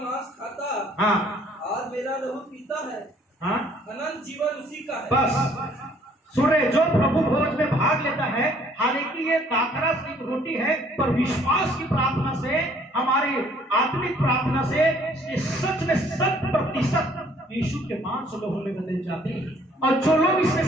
खाता, हाँ, और मेरा लहू पीता है, हाँ, अनंत जीवन उसी का है। बस सुन रहे, जो प्रभु भोज में भाग लेता है, हालांकि ये दाखरस की रोटी है, पर विश्वास की प्रार्थना से, हमारी आत्मिक प्रार्थना से ये सच में 100% यीशु के मांस लोगों में बदल जाते हैं, और जो लोग इसमें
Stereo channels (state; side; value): normal; both; correlation 0.60